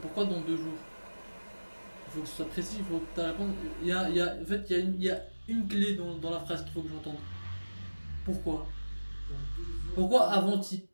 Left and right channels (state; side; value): inverted; both; correlation -1.00